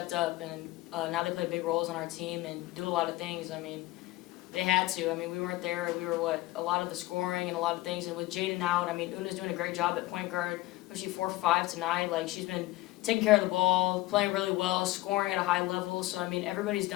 up, and now they play big roles on our team and do a lot of things. I mean, they had to. I mean, we weren't there. We were a lot of the scoring and a lot of things. And with Jaden out, I mean, Una's doing a great job at point guard, especially 4 for 5 tonight. She's been taking care of the ball, playing really well, scoring at a high level. So, I mean, everybody's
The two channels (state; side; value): quieter; right; 18.4 dB